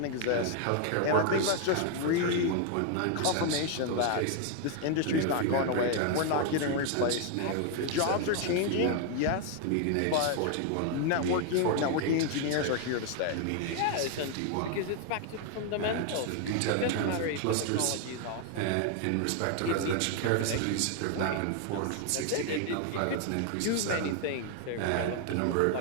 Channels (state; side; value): different; both; correlation 0.00